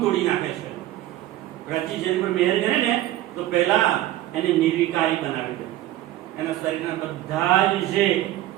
તોડી નાખે છે. પ્રાચી જેની પર મહેર કરે ને તો પહેલા એને નિર્વિકારી બનાવે છે. એના શરીરના બધા જ જે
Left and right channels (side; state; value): left; quieter; 14.7 dB